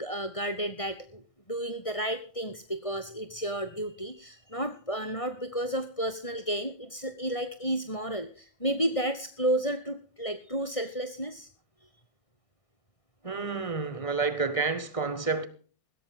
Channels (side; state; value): right; late; 1.6 ms